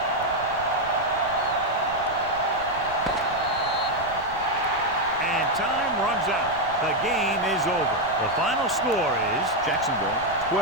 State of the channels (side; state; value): right; noise; rumble, 17 dB below the sound